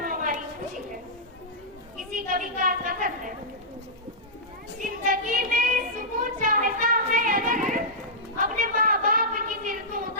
खुशी है। किसी कवि का कथन है, जिंदगी में सुकून चाहता है अगर, अपने माँ बाप की फिर तू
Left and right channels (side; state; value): both; normal; correlation -0.13